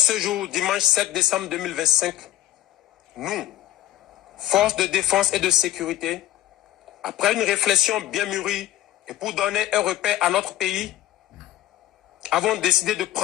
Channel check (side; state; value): right; quieter; 14.0 dB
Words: jour, dimanche 7 décembre 2025, nous, forces de défense et de sécurité, après une réflexion bien mûrie et pour donner un repère à notre pays, avons décidé de